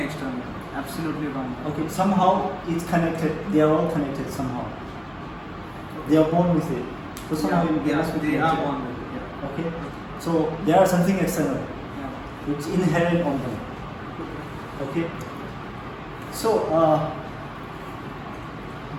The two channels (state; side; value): identical; both; correlation 1.00